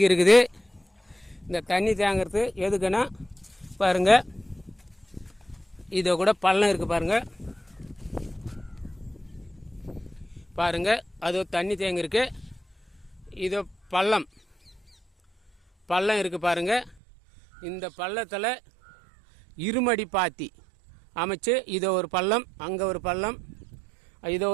இருக்குது. இந்த தண்ணி தேங்கிறது எதுக்குன்னா பாருங்கள், இதை கூட பள்ளம் இருக்குது பாருங்கள், பாருங்கள் அது தண்ணி தேங்கிருக்கு. இது பள்ளம் இருக்குது பாருங்கள். இந்த பள்ளத்தில் இருமடி பாத்தி அமைச்சு இதோ ஒரு பள்ளம், அங்கே ஒரு பள்ளம், இதோ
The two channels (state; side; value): drops out; left; at 16.9 s